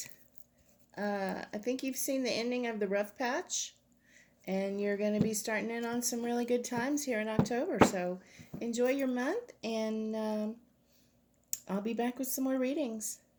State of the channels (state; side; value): identical; both; correlation 1.00